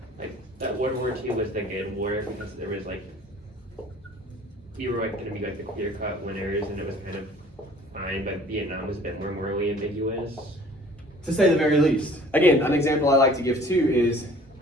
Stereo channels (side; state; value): both; normal; correlation 0.51